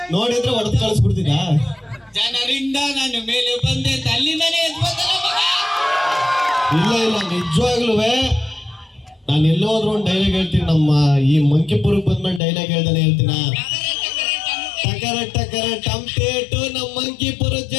ನೋಡಿದ್ರೆ ಹೊಡೆದು ಕಳಿಸ್ಬಿಡ್ತಿದ್ದ. ಜನರಿಂದ ನಾನು ಮೇಲೆ ಬಂದೆ ಅಂತ ಅಲ್ಲಿಂದನೇ ಎದ್ಬೋದಲ್ಲ ಮಗ. ಇಲ್ಲ ಇಲ್ಲ, ನಿಜವಾಗ್ಲೂ ನಾನು ಎಲ್ಲೋದ್ರು ಒಂದು ಡೈಲಾಗ್ ಹೇಳ್ತೀನಿ. ನಮ್ಮ ಈ ಮಂಕಿಪುರಕ್ಕೆ ಬಂದ್ಮೇಲೆ ಡೈಲಾಗ್ ಹೇಳ್ದಾನೆ ಹೇಳ್ತೀನ. ಟಕರ ಟಕರ ಟಂಪೇಟು, ನಮ್ಮ ಮಂಕಿಪುರದ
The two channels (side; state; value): right; drops out; at 12.4 s